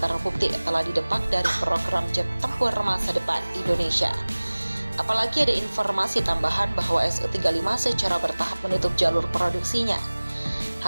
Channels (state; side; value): inverted; both; correlation -1.00